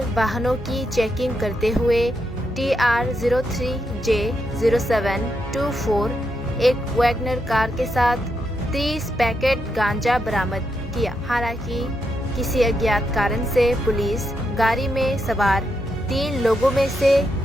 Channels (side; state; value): both; normal; correlation 0.83